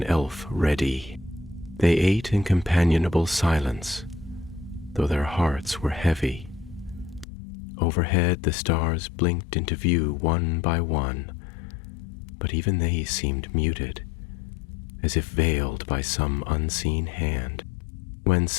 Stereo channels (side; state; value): right; drops out; at 7.2 s